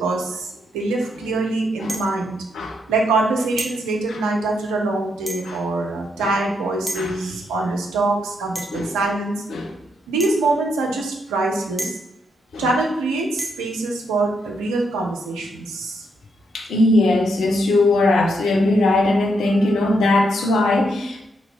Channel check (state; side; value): normal; both; correlation 0.78